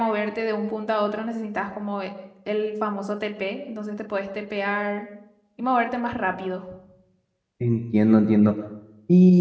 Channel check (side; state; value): both; identical; correlation 1.00